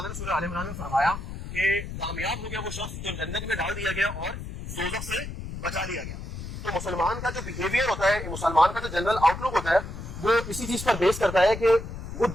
نے سورہ آل عمران میں فرمایا کہ کامیاب ہو گیا وہ شخص جو جنت میں ڈال دیا گیا اور دوزخ سے بچا لیا گیا۔ تو مسلمان کا جو بیہیویئر ہوتا ہے، مسلمان کا جو جنرل آؤٹ لک ہوتا ہے، وہ اسی چیز پر بیس کرتا ہے کہ وہ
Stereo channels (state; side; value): noise; left; rumble, 8 dB below the sound